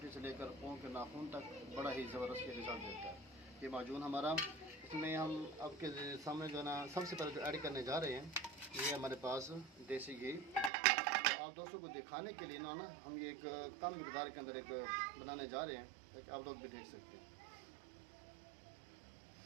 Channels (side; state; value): left; drops out; at 10.7 s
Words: से लेकर पाँव के नाखून तक बड़ा ही ज़बरदस्त ये रिज़ल्ट देता है ये माजून हमारा। इसमें हम आपके सामने जो है ना सबसे पहले जो ऐड करने जा रहे हैं, ये हमारे पास देसी घी। आप दोस्तों को दिखाने के लिए ना हम ये एक कम मकदार के अंदर एक बनाने जा रहे हैं, एक आप लोग भी देख सकते हैं।